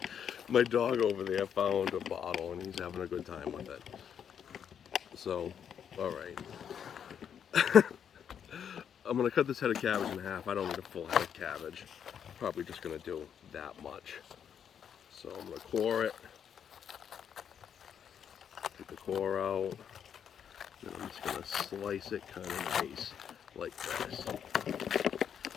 My dog over there found a bottle and he's having a good time with it. So, all right. I'm gonna cut this head of cabbage in half. I don't need a full head of cabbage. Probably just gonna do that much. So I'm gonna core it. Take the core out. Then I'm just gonna slice it kind of nice, like this.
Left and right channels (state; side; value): quieter; right; 8.3 dB